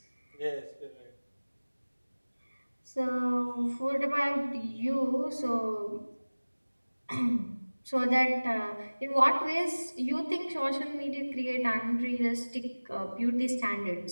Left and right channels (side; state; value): both; inverted; correlation -1.00